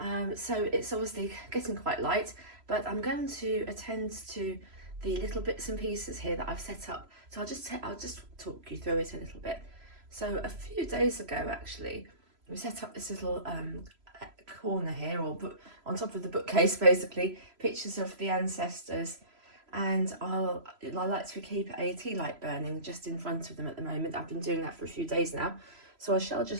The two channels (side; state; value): left; late; 3.0 ms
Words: so it's obviously getting quite light, but I'm going to attend to the little bits and pieces here that I've set up. So I'll just talk you through it a little bit. So a few days ago, actually, we set up this little corner here, or on top of the bookcase, basically, pictures of the ancestors. And I like to keep a tea light burning just in front of them at the moment. I've been doing that for a few days now. So I shall